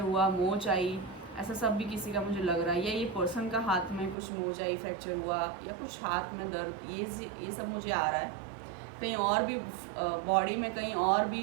हुआ, मोच आई, ऐसा सब भी किसी का मुझे लग रहा है, या ये पर्सन का हाथ में कुछ मोच आई, फ्रैक्चर हुआ, या कुछ हाथ में दर्द, ये सब मुझे आ रहा है। कहीं और भी बॉडी में कहीं और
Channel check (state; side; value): drops out; left; at 4.2 s